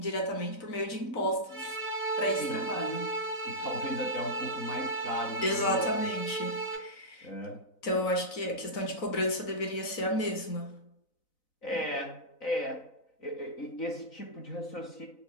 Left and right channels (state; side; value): late; right; 4.0 ms